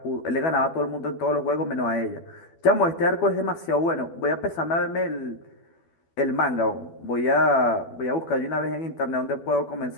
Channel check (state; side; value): late; right; 12 ms